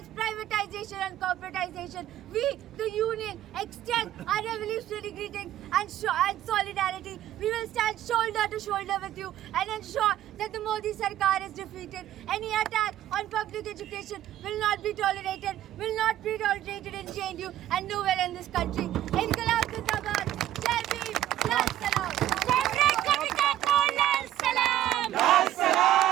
privatization and corporatization. We, the union, extend our revolutionary greetings and solidarity. We will stand shoulder to shoulder with you and ensure that the Modi Sarkar is defeated. Any attack on public education will not be tolerated, in JNU and nowhere in this country. Inqilab Zindabad, Jai Bhim, Lal Salam.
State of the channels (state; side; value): quieter; left; 12.7 dB